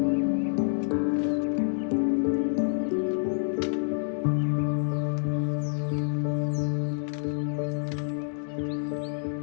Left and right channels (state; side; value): silent; right; digital silence